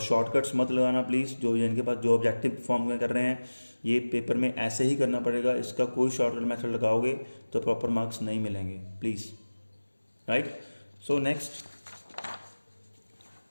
शॉर्टकट्स मत लगाना प्लीज़, जो जिनके पास जो ऑब्जेक्टिव फॉर्म में कर रहे हैं, ये पेपर में ऐसे ही करना पड़ेगा, इसका कोई शॉर्टकट मेथड लगाओगे तो प्रॉपर मार्क्स नहीं मिलेंगे, please, right. So next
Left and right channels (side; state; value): both; inverted; correlation -1.00